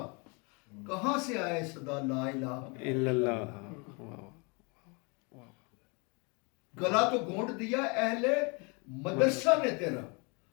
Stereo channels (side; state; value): right; quieter; 31.5 dB